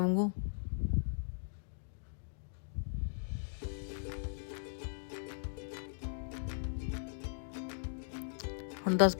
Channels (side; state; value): right; silent; digital silence